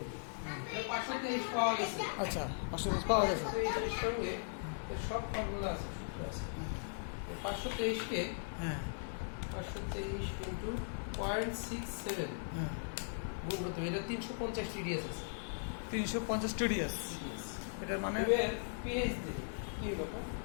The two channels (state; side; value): silent; right; digital silence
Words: এটা 523 পাওয়া গেছে আচ্ছা 523 পাওয়া গেছে। 523 এর সঙ্গে এর সব ফর্মুলা আছে সূত্র আছে 523 কে হ্যাঁ 523 ইনটু 0.67 হ্যাঁ গুণ করতে হবে। এটা 350 টিডিএস আছে 350 টিডিএস। এটার মানে এবার পিএইচ দিই কি ব্যাপার